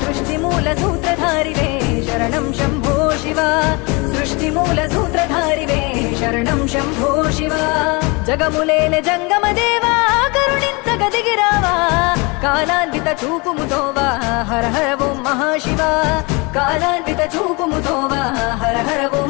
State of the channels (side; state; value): right; quieter; 28.1 dB